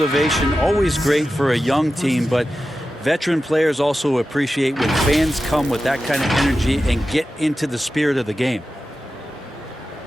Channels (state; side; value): normal; both; correlation 0.93